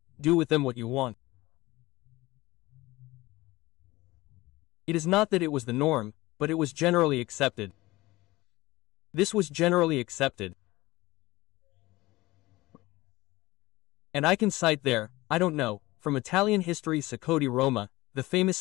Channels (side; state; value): right; quieter; 19.5 dB